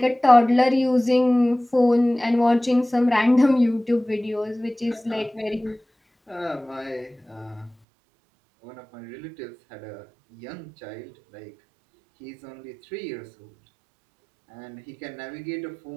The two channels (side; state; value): left; drops out; at 7.8 s